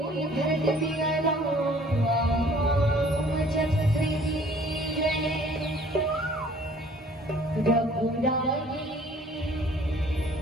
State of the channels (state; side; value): normal; both; correlation 0.55